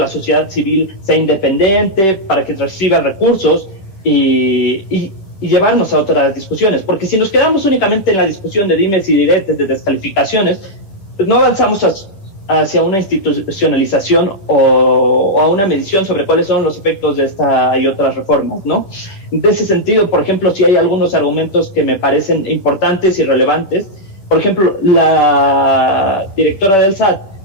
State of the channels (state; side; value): late; right; 10 ms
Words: sociedad civil sea independiente, para que reciba recursos y llevarnos a otras discusiones. Porque si nos quedamos únicamente en la discusión de dimes y diretes, de descalificaciones, pues no avanzamos hacia una institucionalización o a una medición sobre cuáles son los efectos de esta y otras reformas, ¿no? En ese sentido, por ejemplo, sí hay algunos argumentos que me parecen importantes y relevantes. Por ejemplo, la directora del SAT